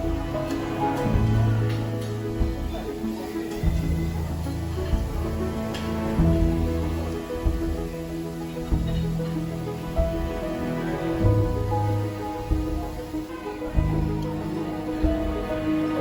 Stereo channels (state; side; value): identical; both; correlation 1.00